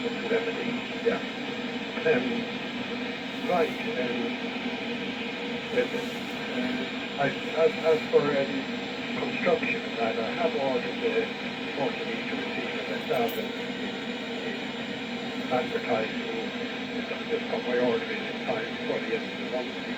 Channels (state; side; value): identical; both; correlation 1.00